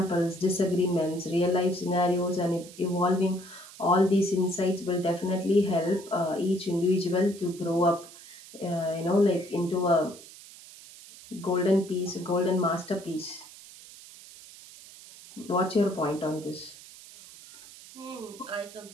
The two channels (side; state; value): right; noise; hiss, 18 dB below the sound